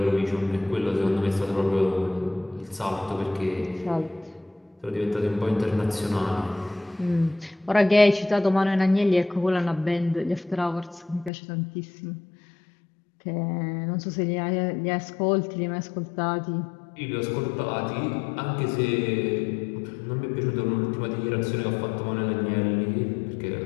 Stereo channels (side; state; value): right; drops out; at 11.3 s